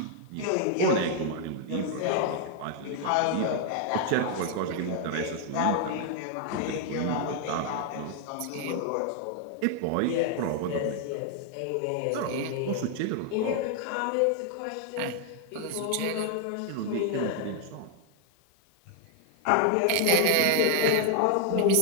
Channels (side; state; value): both; different; correlation 0.00